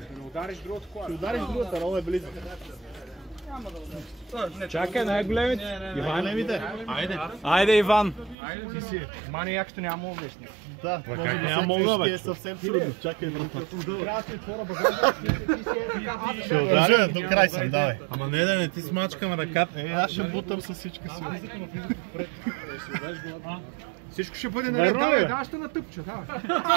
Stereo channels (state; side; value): drops out; left; at 8.3 s